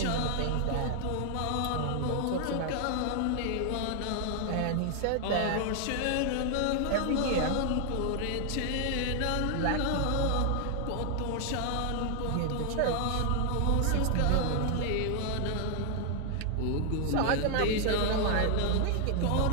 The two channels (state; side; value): different; both; correlation 0.00